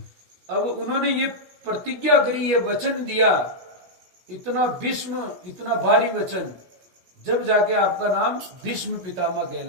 अब उन्होंने ये प्रतिज्ञा करी, ये वचन दिया, इतना भीष्म, इतना भारी वचन, जब जाके आपका नाम भीष्म पितामह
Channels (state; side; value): late; left; 16 ms